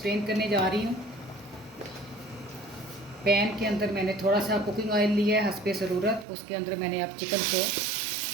करने जा रही हूँ। पैन के अंदर मैंने थोड़ा सा कुकिंग ऑयल लिया है हस्बे ज़रूरत। उसके अंदर मैंने अब चिकन को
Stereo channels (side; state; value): left; drops out; at 6.2 s